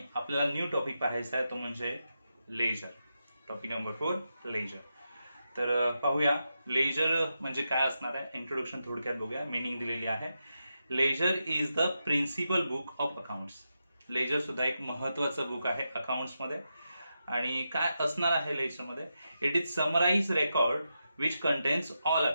आपल्याला न्यू टॉपिक पाहायचा आहे, तो म्हणजे लेजर. Topic number 4 ledger. तर पाहूया लेजर म्हणजे काय असणार आहे. इंट्रोडक्शन थोडक्यात बघूया. मिनिंग दिलेली आहे. Ledger is the principal book of accounts. Ledger सुद्धा एक महत्वाचं बुक आहे अकाउंट्समध्ये. आणि काय असणार आहे लेजरमध्ये? It is summarise record which contains all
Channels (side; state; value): both; inverted; correlation -0.87